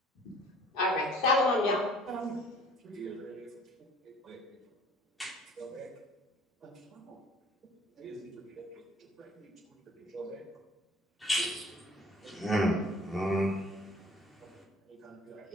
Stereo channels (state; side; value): normal; both; correlation 0.52